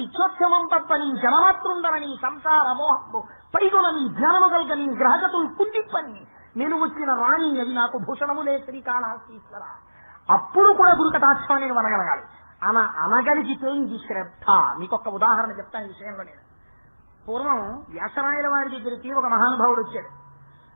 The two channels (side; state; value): both; inverted; correlation -1.00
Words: తప్పని జనమాతృండరని సంసార మోహము పైగొనని జ్ఞానము కల్గని గ్రహగతులు కుండిప్పని నేను వచ్చిన రాణి అది నాకు భూషణములే శ్రీకాళహస్తీశ్వర. అప్పుడు కూడా గురుకటాక్షాన్ని అనగలగాలి. అనగలిగితే ఇది శ్రద్ధ. మీకొక ఉదాహరణ చెప్తాను ఈ విషయంలో. నేను పూర్వం వ్యాసరాయల వారి దగ్గరికి ఒక మహానుభావుడు వచ్చాడు.